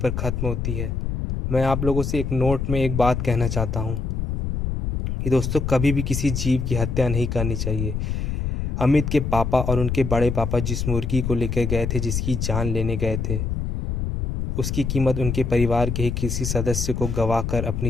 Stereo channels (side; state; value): left; noise; rumble, 2 dB below the sound